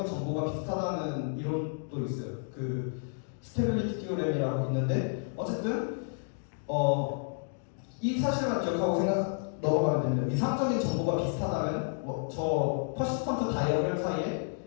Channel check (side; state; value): right; silent; digital silence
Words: 정보가 비슷하다는 이론도 있어요. 스테빌리티 티오렘이라고 있는데 어쨌든 이 사실만 기억하고 넘어가면 됩니다. 위상적인 정보가 비슷하다면 저 퍼시스턴트 다이어그램 사이에